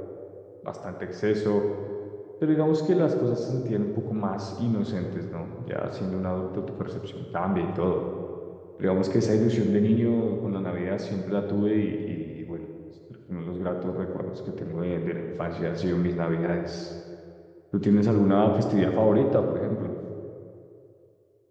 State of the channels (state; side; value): identical; both; correlation 1.00